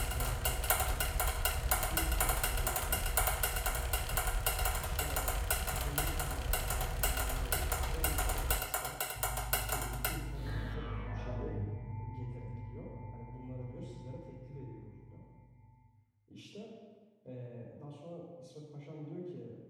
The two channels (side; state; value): both; identical; correlation 1.00